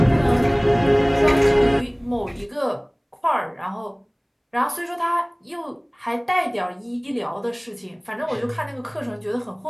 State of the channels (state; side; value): identical; both; correlation 1.00